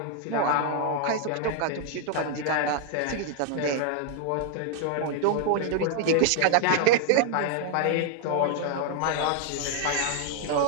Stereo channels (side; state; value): both; different; correlation 0.00